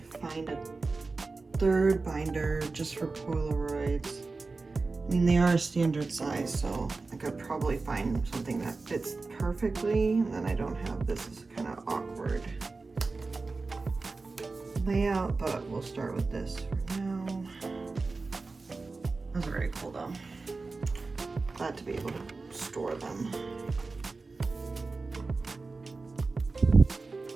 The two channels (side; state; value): left; quieter; 3.8 dB